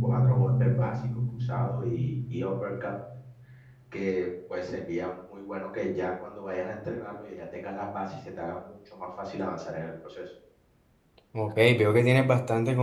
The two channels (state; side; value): identical; both; correlation 1.00